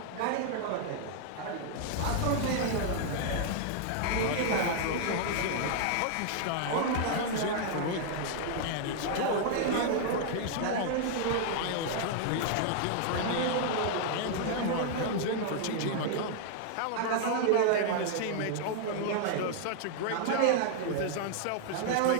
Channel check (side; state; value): both; different; correlation 0.00